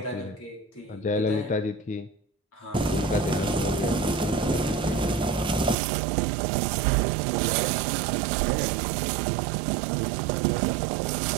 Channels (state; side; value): drops out; left; at 5.8 s